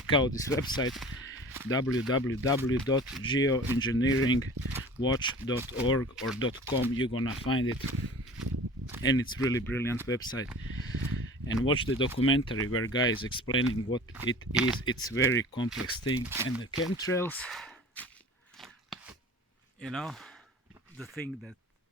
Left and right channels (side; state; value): both; normal; correlation 0.42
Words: out this website www.geoengineeringwatch.org or .com. You're gonna find it, and it's really brilliant website. And watch the documentary where guy is explaining what it is. It's very complex thing. And the chemtrails, you know, the thing that